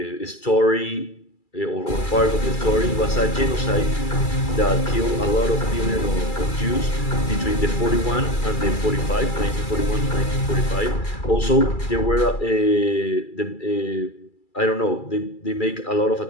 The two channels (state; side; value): late; right; 2.3 ms